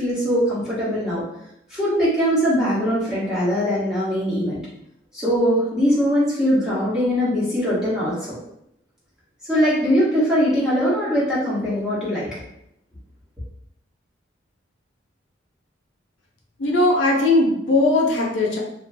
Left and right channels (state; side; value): normal; both; correlation 0.51